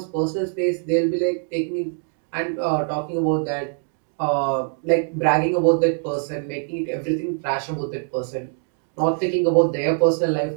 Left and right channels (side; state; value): left; silent; 57 dB below the other